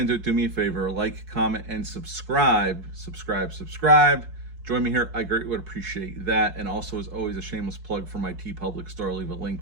it, do me a favor, like, comment, and subscribe. Subscribe. Join me here. I greatly would appreciate that. And also, as always, a shameless plug for my TeePublic store. I'll leave a link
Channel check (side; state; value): left; late; 4.7 ms